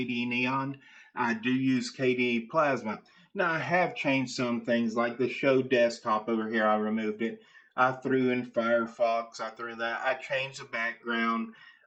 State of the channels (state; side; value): identical; both; correlation 1.00